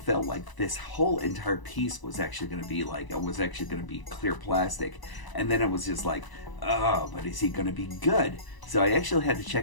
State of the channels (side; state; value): right; late; 1.0 ms